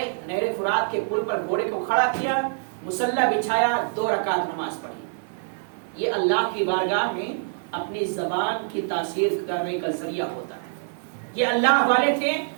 نہر فرات کے پل پر گھوڑے کو کھڑا کیا، مصلی بچھایا، 2 رکعت نماز پڑھی۔ یہ اللہ کی بارگاہ میں اپنی زبان کی تاثیر کرنے کا ذریعہ ہوتا ہے۔ یہ اللہ والے تھے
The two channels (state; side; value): silent; left; digital silence